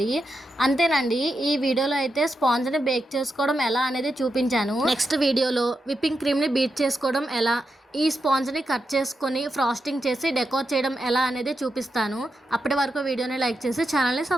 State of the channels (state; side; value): normal; both; correlation 0.86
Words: అంతేనండి, ఈ వీడియోలో అయితే స్పాంజ్ని బేక్ చేసుకోవడం ఎలా అనేది చూపించాను. నెక్స్ట్ వీడియోలో విప్పింగ్ క్రీమ్ని బీట్ చేసుకోవడం ఎలా, ఈ స్పాంజ్ని కట్ చేసుకొని ఫ్రాస్టింగ్ చేసి డెకోర్ చేయడం ఎలా అనేది చూపిస్తాను. అప్పటి వరకు వీడియోని లైక్ చేసి ఛానల్ని